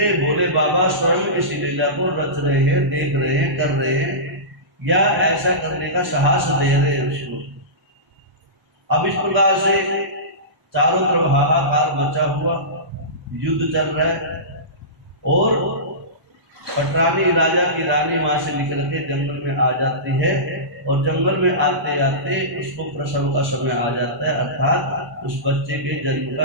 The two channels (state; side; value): late; left; 1.0 ms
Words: भोले बाबा स्वयं इस लीला को रच रहे हैं, देख रहे हैं, कर रहे हैं, या ऐसा करने का साहस दे रहे हैं उसको। अब इस प्रकार से चारों तरफ हाहाकार मचा हुआ, युद्ध चल रहा है, और पटरानी राजा की रानी वहां से निकल के जंगल में आ जाती है, और जंगल में आते आते उसको प्रसव का समय आ जाता है, अर्थात उस बच्चे के जन्म